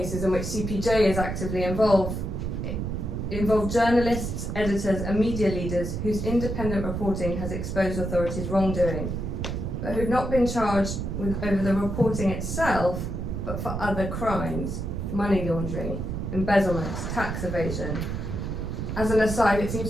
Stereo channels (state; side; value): noise; right; rumble, 3 dB below the sound